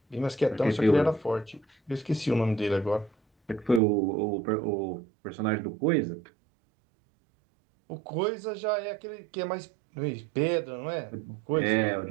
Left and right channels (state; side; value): drops out; left; at 3.8 s